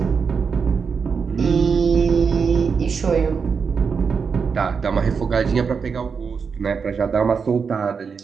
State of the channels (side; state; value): left; quieter; 5.8 dB